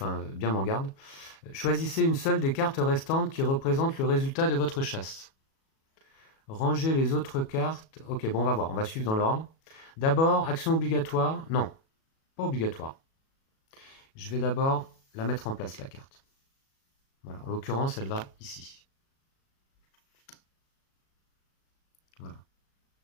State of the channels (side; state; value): right; late; 37 ms